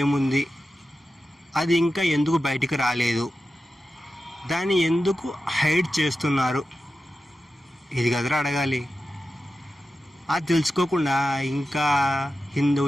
అది ఇంకా ఎందుకు బయటికి రాలేదు? దాన్ని ఎందుకు హైడ్ చేస్తున్నారు? ఇది కదరా అడగాలి. అది తెలుసుకోకుండా ఇంకా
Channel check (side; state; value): both; normal; correlation 0.92